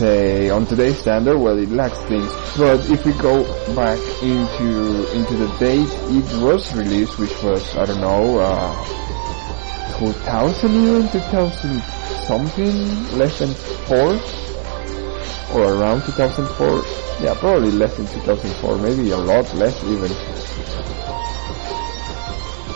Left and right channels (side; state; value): left; silent; digital silence